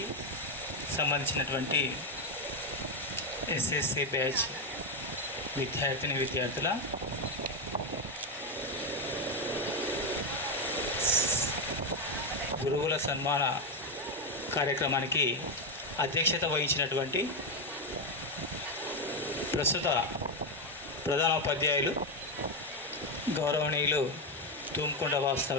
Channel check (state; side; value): normal; both; correlation 0.08